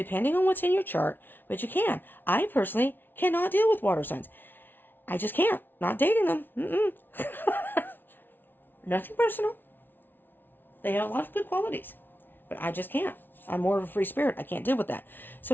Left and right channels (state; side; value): late; right; 0.095 ms